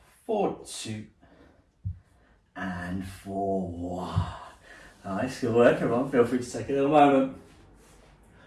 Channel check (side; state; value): both; identical; correlation 1.00